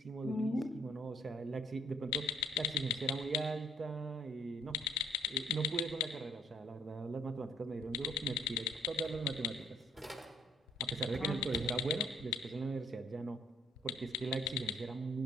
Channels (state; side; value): normal; both; correlation 0.61